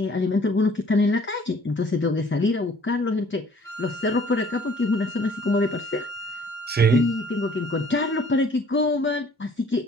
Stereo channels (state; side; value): normal; both; correlation 0.56